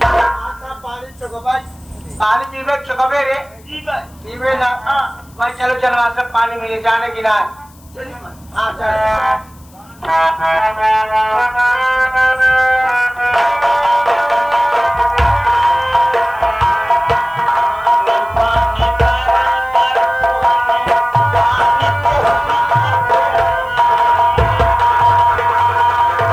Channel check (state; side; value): noise; left; hiss, 28 dB below the sound